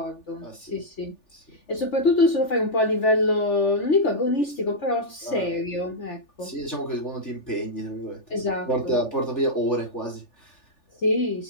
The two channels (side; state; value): right; late; 3.4 ms